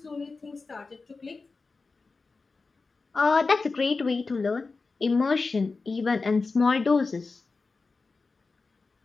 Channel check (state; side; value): quieter; right; 4.1 dB